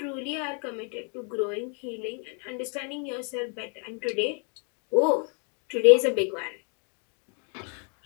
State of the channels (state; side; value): quieter; right; 38.8 dB